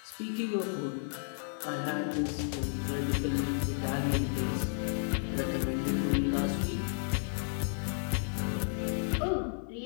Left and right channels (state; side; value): silent; right; 56 dB below the other